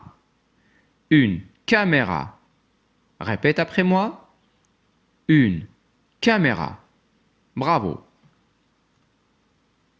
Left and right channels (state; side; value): identical; both; correlation 1.00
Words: Une caméra. Répète après moi. Une caméra. Bravo.